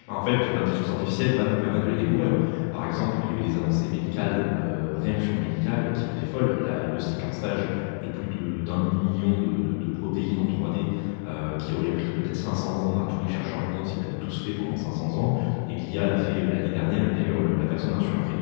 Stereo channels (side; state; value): right; silent; digital silence